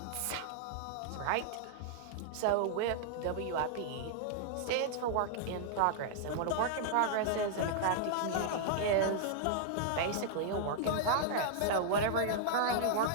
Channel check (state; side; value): different; both; correlation -0.01